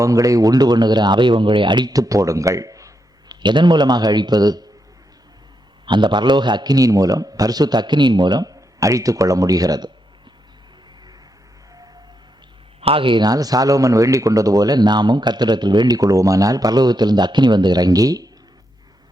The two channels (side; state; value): both; normal; correlation 0.82